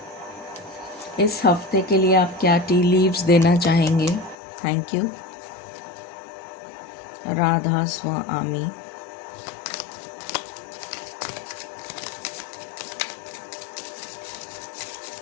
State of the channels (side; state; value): right; drops out; at 4.4 s